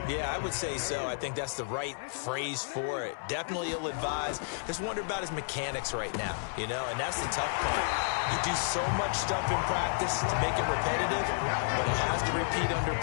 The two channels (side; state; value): right; silent; 57 dB below the other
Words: Yeah, I would say so. I think that's the right phrase for it. Definitely ill-advised. Just wonder about his mechanics right now, you know, and that's the tough part. You do so much stuff in practice to make it repetitive, but it has to repeat under